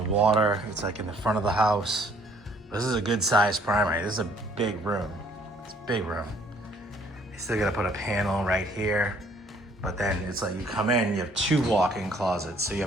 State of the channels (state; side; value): normal; both; correlation 0.61